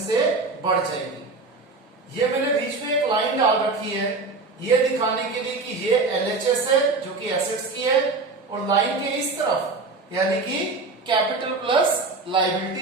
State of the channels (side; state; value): left; quieter; 3.7 dB